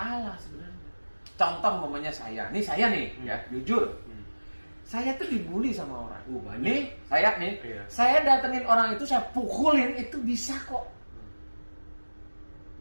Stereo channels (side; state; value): both; inverted; correlation -1.00